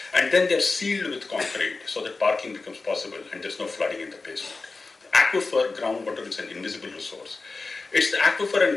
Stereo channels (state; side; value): quieter; right; 3.8 dB